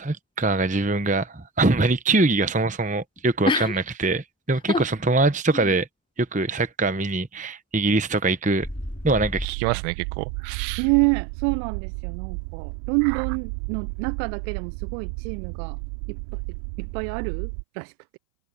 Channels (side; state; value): left; drops out; at 9.5 s